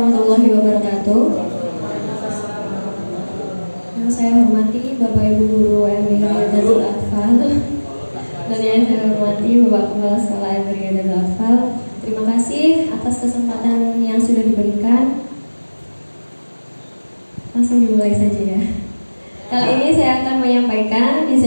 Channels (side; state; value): both; inverted; correlation -1.00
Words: wabarakatuh. Yang saya hormati Bapak Ibu Guru MI Riyadatul Atfal dan yang saya hormati Bapak Kepala Sekolah MI Riyadatul Atfal. Terima kasih atas kesempatan yang sudah diberikan. Langsung dimulai saja ya. Kali ini saya akan menyampaikan